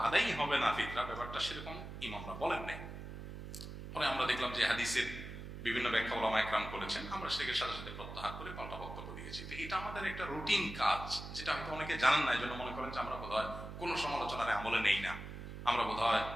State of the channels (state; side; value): noise; right; hum, 9 dB below the sound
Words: আদায়ই হবে না ফিতরা, ব্যাপারটা সেরকম ইমামরা বলেন নাই। পরে আমরা দেখলাম যে হাদিসের বিভিন্ন ব্যাখ্যা ওলামা একরাম করেছেন, আমরা সেটাকে সাথে সাথে প্রত্যাহার করে পাল্টা বক্তব্য দিয়েছি। তো এটা আমাদের একটা রুটিন কাজ, যেটা হয়তো অনেকে জানেন না, এই জন্য মনে করেন যে আমরা বোধহয় কোনো সমালোচনার আমলে নেই না, আমরা বোধহয়